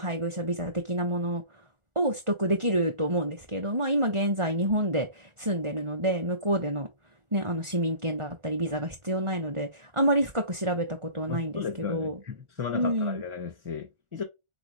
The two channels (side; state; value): left; late; 1.4 ms